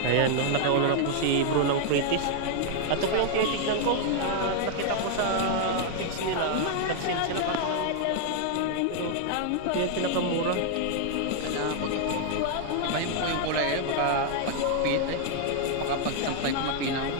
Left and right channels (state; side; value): different; both; correlation 0.00